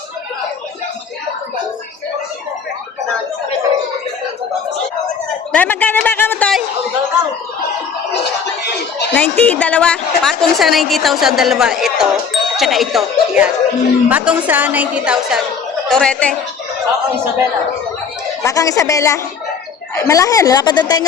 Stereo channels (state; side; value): quieter; right; 6.2 dB